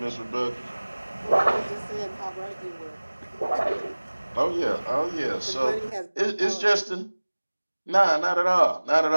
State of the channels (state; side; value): inverted; both; correlation -1.00